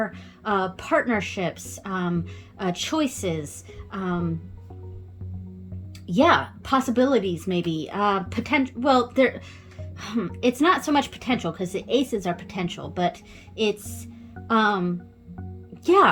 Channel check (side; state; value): both; identical; correlation 1.00